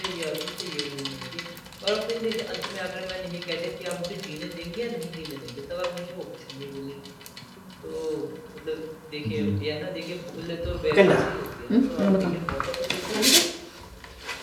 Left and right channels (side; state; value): both; identical; correlation 1.00